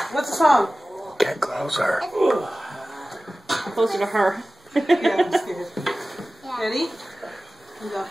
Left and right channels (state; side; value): normal; both; correlation 0.97